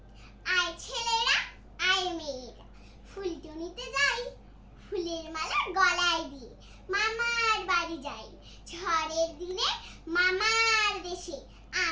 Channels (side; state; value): both; identical; correlation 1.00